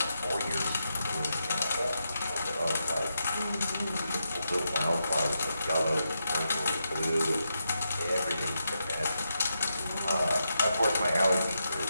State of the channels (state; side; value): inverted; both; correlation -0.85